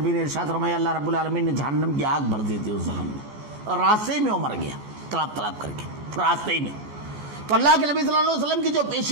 نے ارشاد فرمایا اللہ رب العالمین نے جہنم کی آگ بھر دی تھی اس زخم میں، اور راستے میں وہ مر گیا تڑپ تڑپ کر کے راستے میں۔ تو اللہ کے نبی صلی اللہ علیہ وسلم کی جو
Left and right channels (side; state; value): left; late; 14 ms